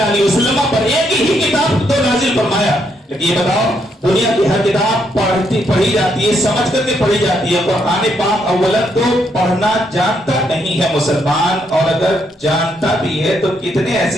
علیہ وسلم پر ایک ہی کتاب تو نازل فرمایا، لیکن یہ بتاؤ دنیا کی ہر کتاب پڑھی جاتی ہے، سمجھ کر کے پڑھی جاتی ہے، قرآن پاک اولا تو پڑھنا جانتا نہیں ہے مسلمان، اور اگر جانتا بھی ہے تو کتنے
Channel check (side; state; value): both; normal; correlation 0.75